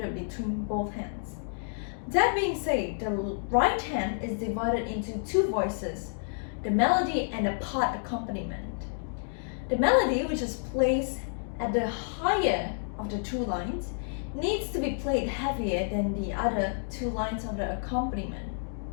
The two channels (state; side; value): silent; right; digital silence